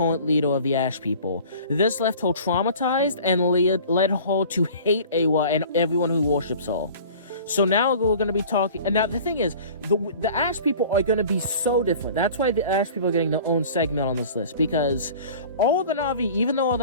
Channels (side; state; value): both; inverted; correlation -0.44